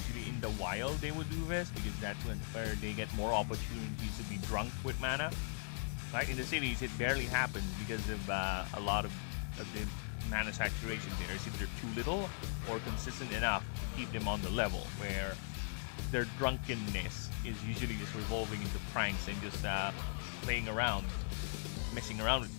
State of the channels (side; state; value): right; silent; digital silence